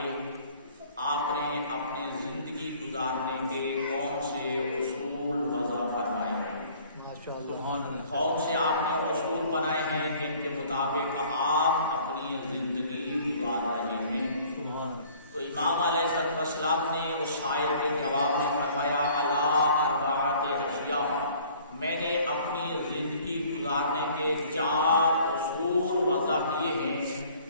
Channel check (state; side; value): inverted; both; correlation -0.54